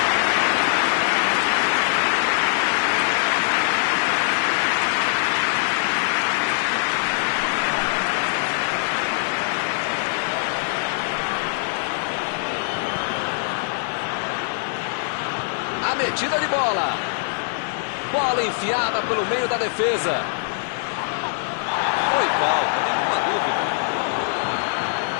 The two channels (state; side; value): silent; right; 64 dB below the other